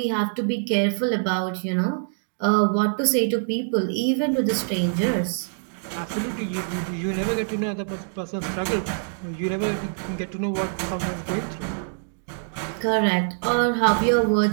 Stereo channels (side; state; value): left; silent; digital silence